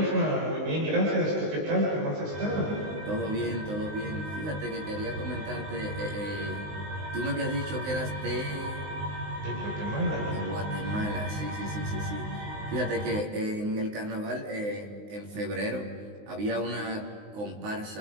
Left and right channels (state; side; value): late; left; 19 ms